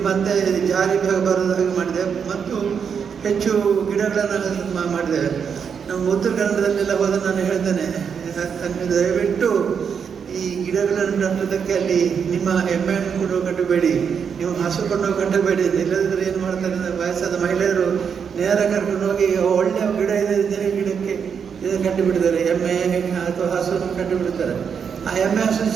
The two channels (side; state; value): left; quieter; 6.9 dB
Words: ಮತ್ತೆ ಜಾರಿ ಬರೋದ ಹಾಗೆ ಮಾಡಿದ್ದೇವೆ. ಮತ್ತು ಹೆಚ್ಚು ಗಿಡಗಳನ್ನು ಮಾಡಿದ್ದೇವೆ. ನಮ್ಮ ಉತ್ತರ ಕನ್ನಡದಲ್ಲೆಲ್ಲ ಹೋದ ನಾನು ಹೇಳ್ತೇನೆ, ದಯವಿಟ್ಟು ಈ ಗಿಡಗಳನ್ನು ನಟ್ಟೋದಕ್ಕೆ ಅಲ್ಲಿ ನಿಮ್ಮ ಎಮ್ಮೆಯನ್ನು ಕೊಂಡು ಕಟ್ಟಬೇಡಿ, ನೀವು ಹಸು ಕೊಂಡು ಕಟ್ಟಬೇಡಿ. ಇಲ್ಲದಿದ್ದರೆ ಏನು ಮಾಡ್ತಾರೆ, ವಯಸ್ಸಾದ ಮಹಿಳೆಯರು ನೇರ ಕರ್ಕೊಂಡು ಹೋಗಿ ಒಳ್ಳೆಯ ಗಿಡ ಇದೆ ಗಿಡಕ್ಕೆ ಇದನ್ನು ಕಟ್ಟಿಬಿಡ್ತಾರೆ, ಎಮ್ಮೆ ಅಥವಾ ಹಸುವನ್ನು ಕಟ್ಟಿಬಿಡ್ತಾರೆ. ಆ ಎಮ್ಮೆ ಹಸು